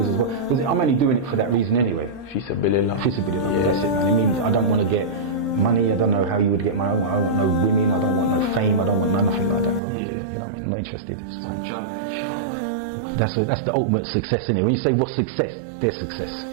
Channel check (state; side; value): drops out; left; at 9.8 s